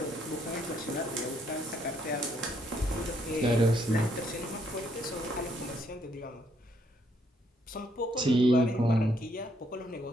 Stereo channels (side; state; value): both; normal; correlation 0.71